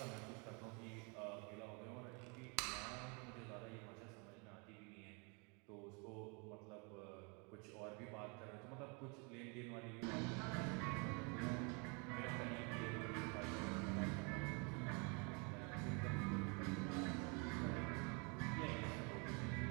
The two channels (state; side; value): quieter; left; 33.2 dB